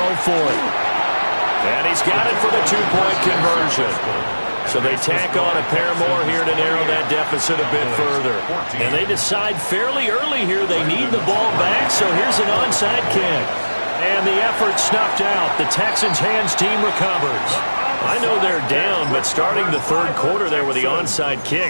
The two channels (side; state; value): both; inverted; correlation -1.00